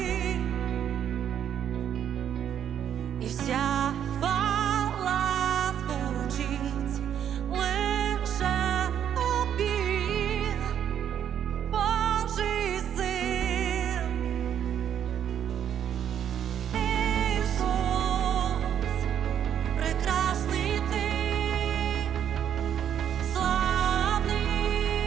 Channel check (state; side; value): quieter; left; 9.4 dB